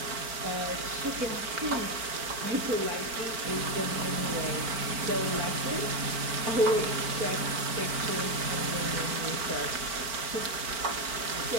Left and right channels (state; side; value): late; left; 4.4 ms